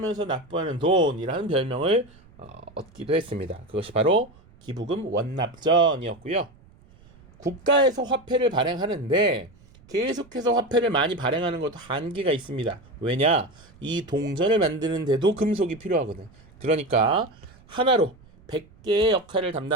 납부하는 돈이라는 별명을 얻기도 했습니다. 그것이 바로 기부금 원납전이었고요. 국가에서 화폐를 발행하는데 계속해서 화폐를 많이 발행하는 것도 한계가 있습니다. 왜냐? 이 동전을 만드는데도 금속이 필요하거든. 그러니까 하나로 100개의 역할을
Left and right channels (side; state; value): right; noise; rumble, 26 dB below the sound